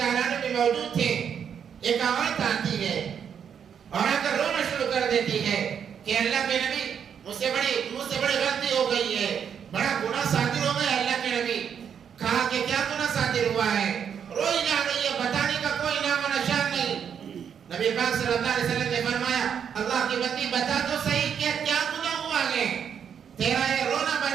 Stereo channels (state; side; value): quieter; left; 7.9 dB